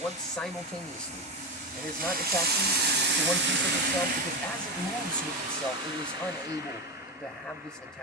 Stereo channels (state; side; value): normal; both; correlation 0.17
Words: once simultaneously. And it's not attaching to one piece of itself, because as it moves with itself, it is unable to have this